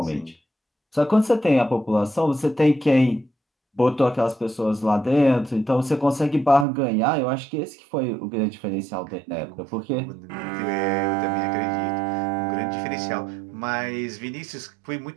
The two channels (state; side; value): drops out; left; at 6.7 s